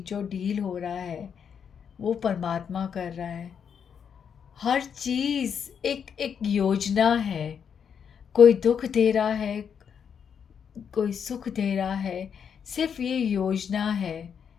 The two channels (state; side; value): quieter; right; 7.4 dB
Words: डील हो रहा है वो परमात्मा कर रहा है। हर चीज़ एक एक योजना है। कोई दुख दे रहा है, कोई सुख दे रहा है, सिर्फ ये योजना है